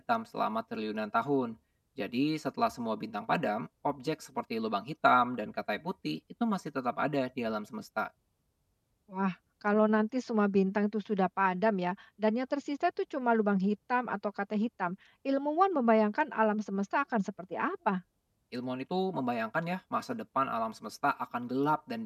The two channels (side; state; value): both; identical; correlation 1.00